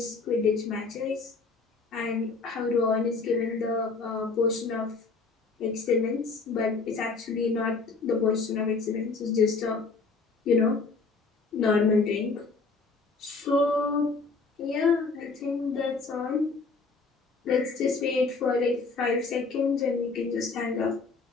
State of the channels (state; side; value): quieter; right; 4.2 dB